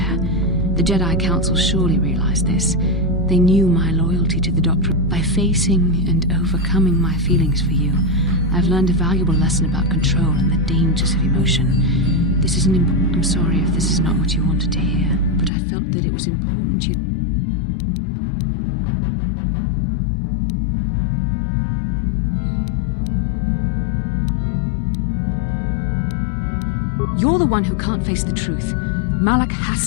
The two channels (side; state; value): right; drops out; at 15.5 s